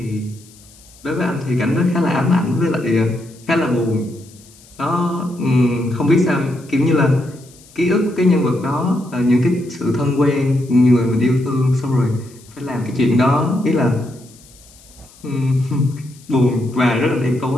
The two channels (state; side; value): noise; left; hiss, 25 dB below the sound